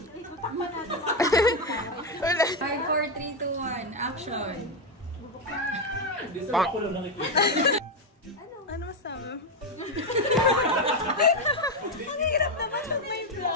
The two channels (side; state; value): both; normal; correlation 0.06